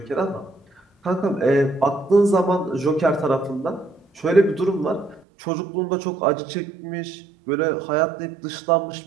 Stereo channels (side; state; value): left; drops out; at 5.2 s